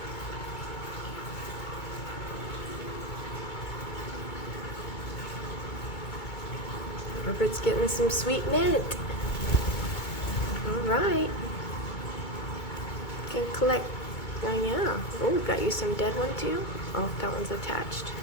Robert's getting some sweet mint. All right. Can collect. Oh yeah. Oh, we got you some dead one too. Oh, that one's attached.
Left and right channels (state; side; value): late; right; 2.2 ms